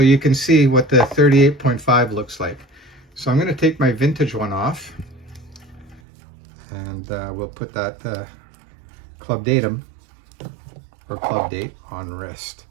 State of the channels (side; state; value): left; drops out; at 6.0 s